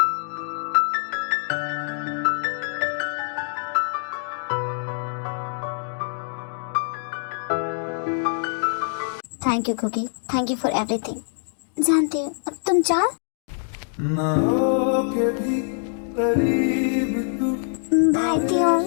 Thank you Cookie, thank you for everything. जानती हूँ, अब तुम जाओ। ना हो के भी करीब तू, बाय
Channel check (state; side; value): silent; right; digital silence